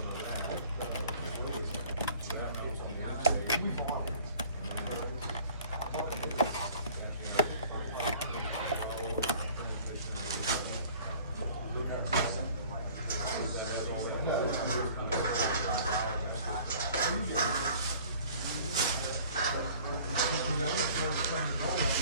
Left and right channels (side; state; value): both; inverted; correlation -0.50